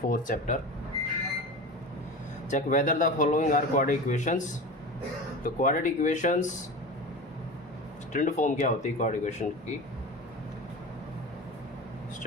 chapter. Check whether the following are quadratic equations. तो क्वाड्रेटिक इक्वेशंस स्टैंडर्ड फॉर्म क्या होती है क्वाड्रेटिक इक्वेशन की?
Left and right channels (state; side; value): normal; both; correlation 0.30